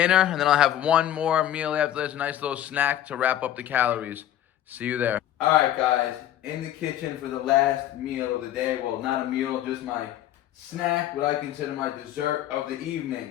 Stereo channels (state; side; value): quieter; right; 12.1 dB